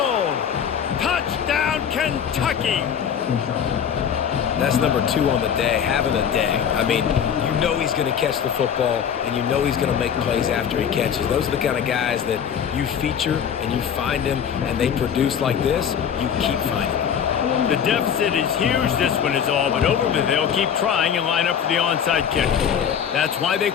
Touchdown, Kentucky. That's number 2 on the day, having a day. I mean, you know he's going to catch the football, and you know he's going to make plays after he catches. Those are the kind of guys that you feature and you find them, and they produce like this, you keep finding them. The deficit is huge. This one is all but over, but they'll keep trying and line up for the onside kick. That's why they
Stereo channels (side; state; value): right; quieter; 8.1 dB